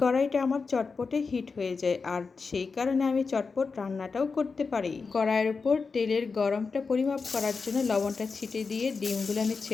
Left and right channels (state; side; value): quieter; right; 4.7 dB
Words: কড়াইটা আমার চটপটে হিট হয়ে যায়, আর সেই কারণে আমি চটপট রান্নাটাও করতে পারি। কড়াইয়ের উপর তেলের গরমটা পরিমাপ করার জন্য লবণটা ছিটিয়ে দিয়ে ডিমগুলো আমি